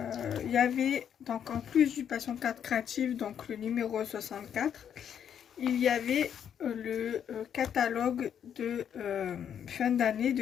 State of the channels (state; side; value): quieter; right; 8.7 dB